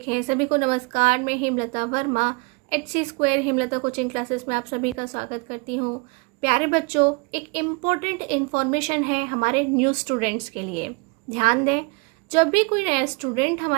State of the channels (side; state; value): left; quieter; 29.7 dB